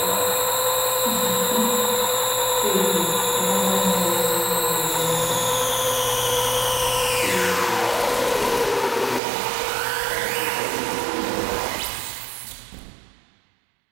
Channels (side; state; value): left; drops out; at 9.2 s